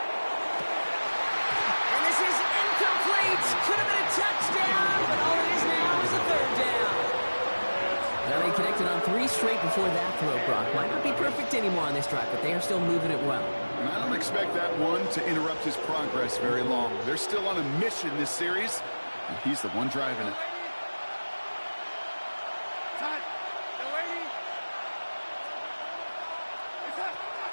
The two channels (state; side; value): inverted; both; correlation -1.00